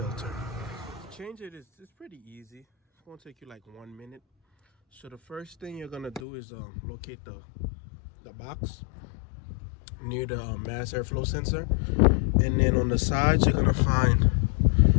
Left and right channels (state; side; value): drops out; right; at 6.2 s